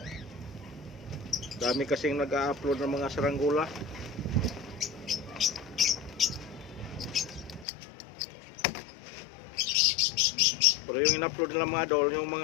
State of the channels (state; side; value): drops out; right; at 7.7 s